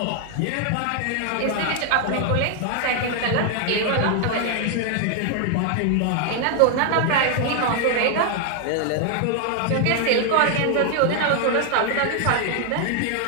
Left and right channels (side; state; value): both; different; correlation 0.00